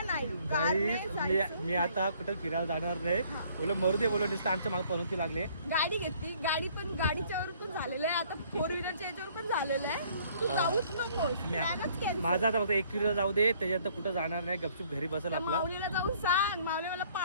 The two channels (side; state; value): both; inverted; correlation -0.60